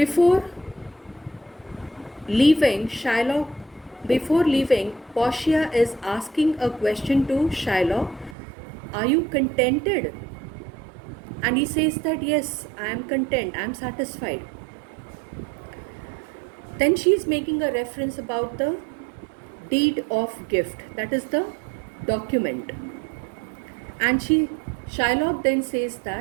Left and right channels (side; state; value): left; drops out; at 8.3 s